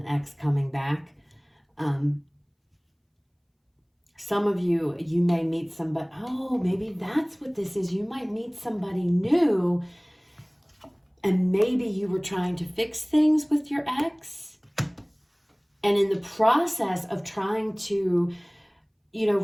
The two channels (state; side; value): identical; both; correlation 1.00